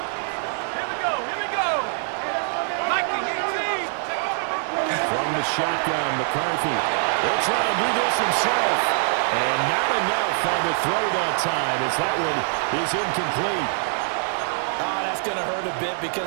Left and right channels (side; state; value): left; silent; 63 dB below the other